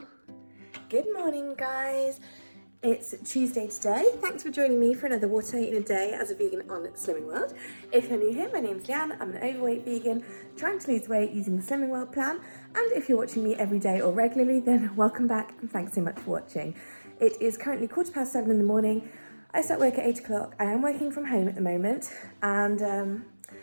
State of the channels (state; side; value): inverted; both; correlation -1.00